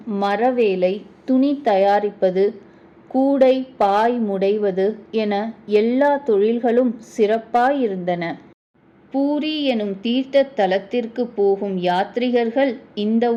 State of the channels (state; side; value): identical; both; correlation 1.00